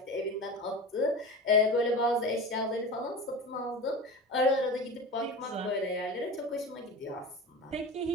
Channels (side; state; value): both; normal; correlation 0.30